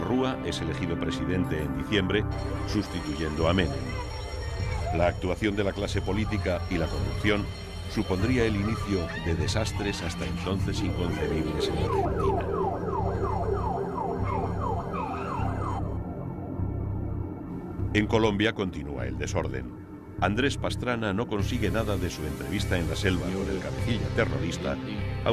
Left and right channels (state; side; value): identical; both; correlation 1.00